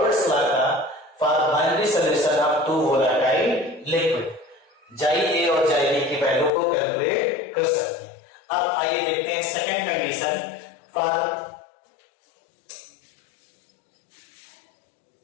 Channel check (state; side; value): drops out; right; at 6.5 s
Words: लॉ का for binary solution of two volatile liquid, xi A और जाई बी की वैल्यू को कैलकुलेट कर सकते हैं। अब आइए देखते हैं second condition for